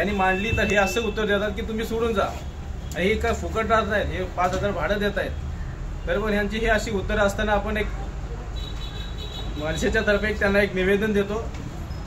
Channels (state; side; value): identical; both; correlation 1.00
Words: मांडली तर हे असं उत्तर देतात की तुम्ही सोडून जा, हे काय फुकट राहत नाहीत, हे 5000 भाडं देत आहेत। तर पण यांची ही अशी उत्तरं असताना आपण एक मनसेच्या तर्फे त्यांना एक निवेदन देतो